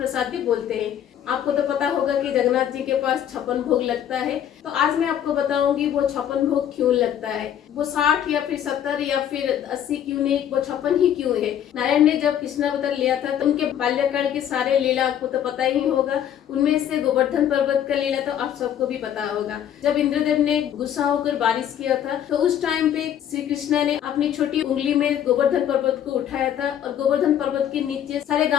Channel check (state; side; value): quieter; right; 10.0 dB